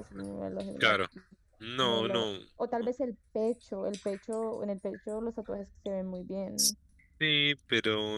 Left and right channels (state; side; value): identical; both; correlation 1.00